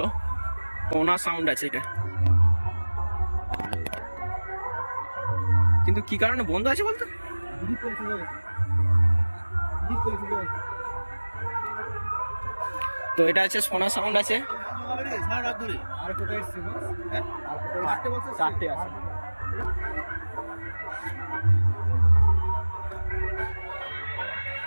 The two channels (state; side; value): inverted; both; correlation -1.00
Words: কোনা সাউন্ড আছে এটা, কিন্তু কি কারণে বন্ধ আছে বলতো। তো এটা আছে সোনা সাউন্ড আছে।